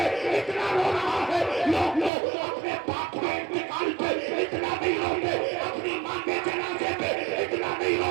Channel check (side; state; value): left; drops out; at 2.1 s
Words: इतना रो रहा है। लोग अपने बाप के इंतकाल पे इतना नहीं रोते, अपनी माँ के जनाजे पे इतना नहीं